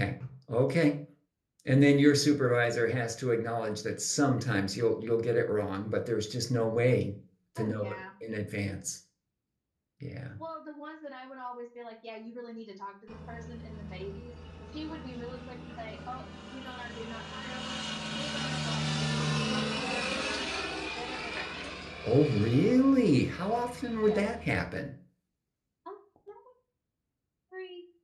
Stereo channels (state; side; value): identical; both; correlation 1.00